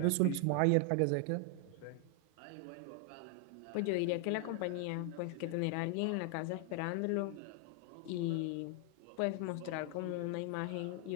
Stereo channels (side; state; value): both; different; correlation 0.00